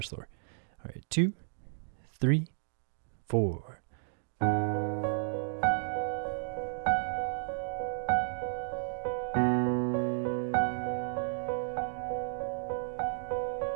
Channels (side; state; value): left; silent; digital silence